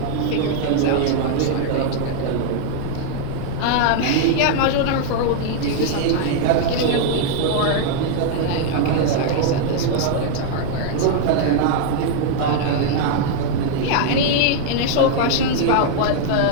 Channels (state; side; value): different; both; correlation 0.00